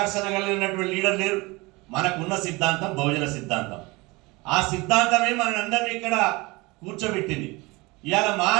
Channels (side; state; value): left; quieter; 23.9 dB